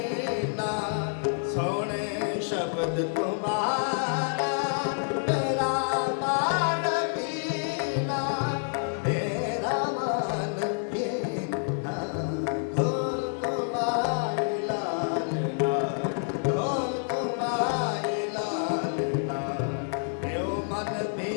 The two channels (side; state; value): right; silent; digital silence